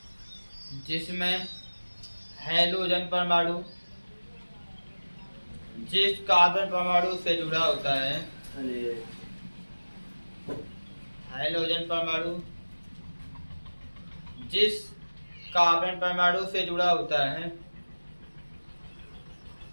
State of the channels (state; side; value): inverted; both; correlation -1.00